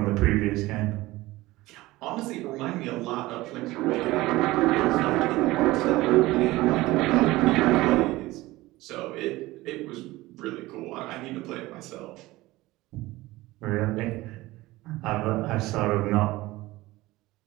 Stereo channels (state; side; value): quieter; left; 18.9 dB